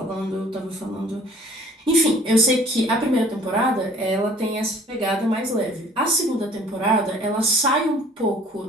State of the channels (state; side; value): normal; both; correlation 0.53